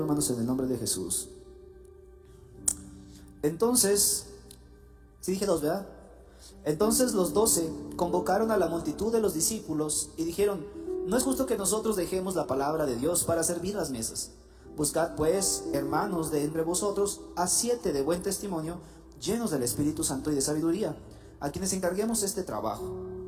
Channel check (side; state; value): both; identical; correlation 1.00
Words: hermanos, en el nombre de Jesús. Entonces, sí dije 2, ¿verdad? Entonces los 12 convocaron a la multitud de los discípulos y dijeron: no es justo que nosotros dejemos la palabra de Dios para servir las mesas. Buscad pues, hermanos, de entre vosotros a 7 de buen testimonio, llenos del Espíritu Santo y de sabiduría, a quienes encarguemos este trabajo.